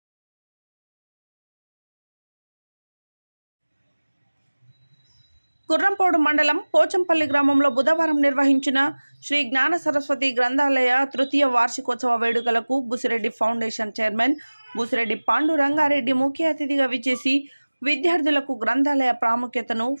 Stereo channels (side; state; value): both; inverted; correlation -1.00